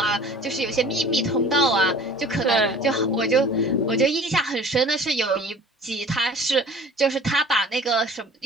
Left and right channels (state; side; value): normal; both; correlation 0.46